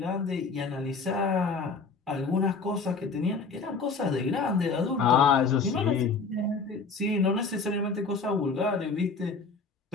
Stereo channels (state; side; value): quieter; right; 4.6 dB